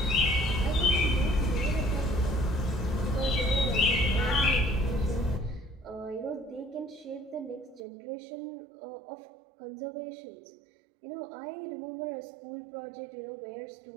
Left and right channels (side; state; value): left; drops out; at 7.8 s